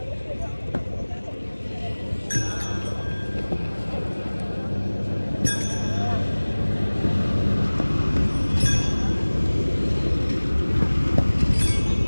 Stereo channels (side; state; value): both; inverted; correlation -1.00